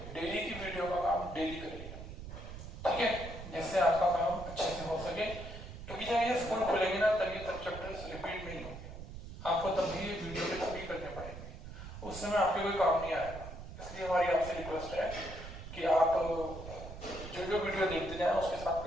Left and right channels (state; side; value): noise; right; rumble, 11 dB below the sound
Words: डेली की वीडियो का काम डेली करिए, ठीक है, जिससे आपका काम अच्छे से हो सके। क्योंकि जब ये स्कूल खुलेंगे ना तब ये सब चैप्टर्स रिपीट नहीं होंगे, आपको तब भी वीडियो के थ्रू करने पड़ेंगे, उस समय आपके कोई काम नहीं आएगा। इसलिए हमारी आपसे रिक्वेस्ट है कि आप जो जो वीडियो देखते जाएं उसके साथ